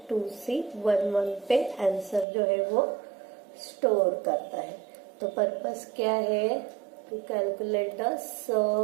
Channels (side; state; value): left; drops out; at 2.2 s